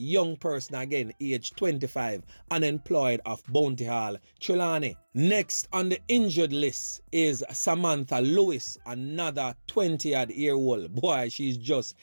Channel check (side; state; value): both; inverted; correlation -1.00